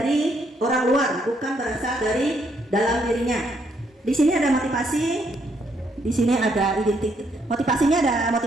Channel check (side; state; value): both; normal; correlation 0.73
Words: orang luar, bukan berasal dari dalam dirinya. Di sini ada motivasi, di sini ada identitas. Motivasinya ada